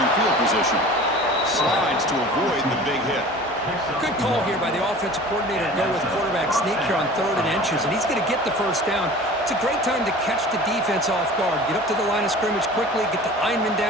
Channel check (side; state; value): both; normal; correlation 0.41